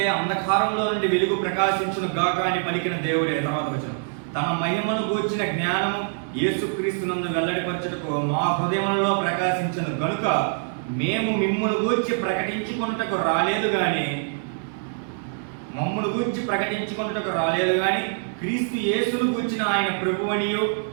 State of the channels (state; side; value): silent; left; digital silence